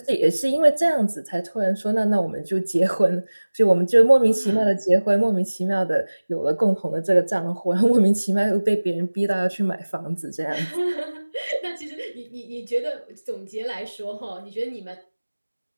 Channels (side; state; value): both; inverted; correlation -1.00